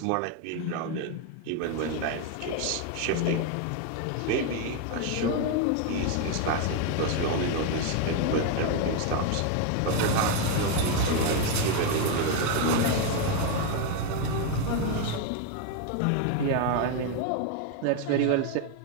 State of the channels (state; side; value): different; both; correlation 0.01